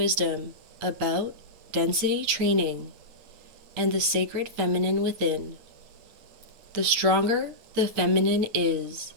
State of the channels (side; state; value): left; late; 8.7 ms